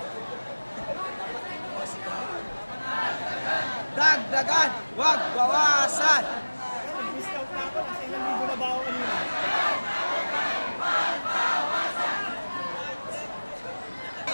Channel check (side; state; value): both; inverted; correlation -1.00